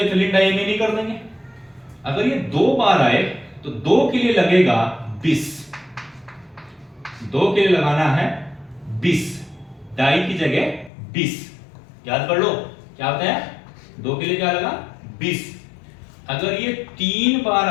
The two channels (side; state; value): right; drops out; at 10.9 s